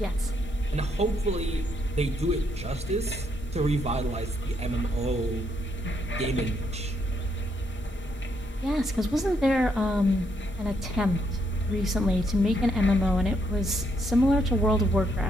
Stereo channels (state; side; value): normal; both; correlation 0.75